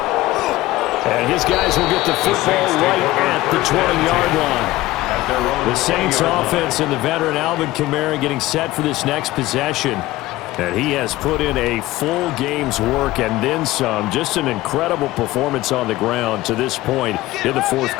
And his guys will get the football right at the 20-yard line. The Saints offense and the veteran Alvin Kamara getting set for this next possession. And he has put in a full game's work and then some. Just an incredible performance on the ground to this point in the fourth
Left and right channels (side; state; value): right; quieter; 17.5 dB